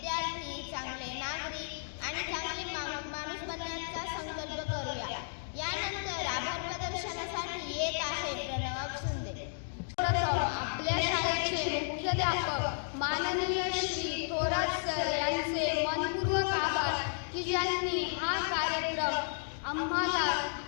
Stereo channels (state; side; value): silent; right; digital silence